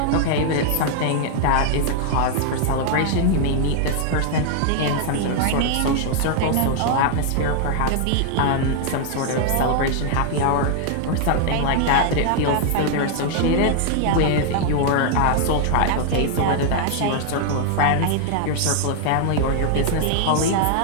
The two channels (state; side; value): different; both; correlation 0.00